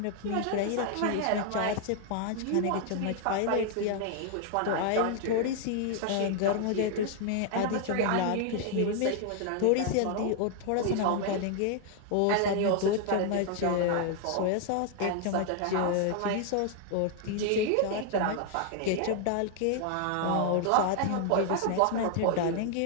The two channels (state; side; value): different; both; correlation 0.00